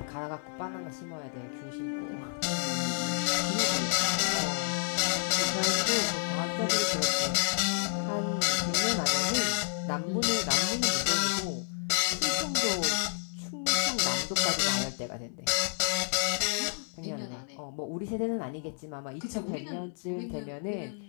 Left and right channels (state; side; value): silent; right; digital silence